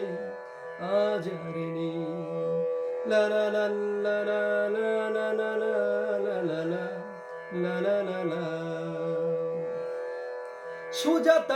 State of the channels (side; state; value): both; identical; correlation 1.00